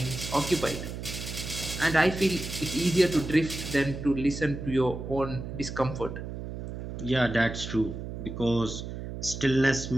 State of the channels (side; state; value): right; noise; hum, 8 dB below the sound